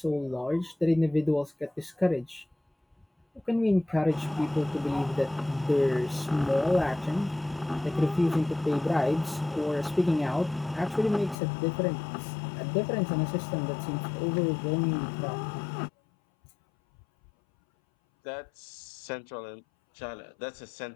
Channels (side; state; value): right; drops out; at 11.4 s